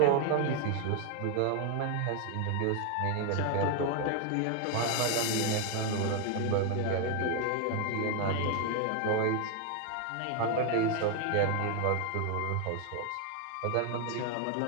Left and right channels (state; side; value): different; both; correlation 0.01